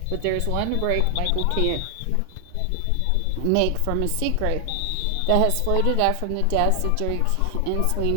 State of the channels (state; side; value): different; both; correlation 0.00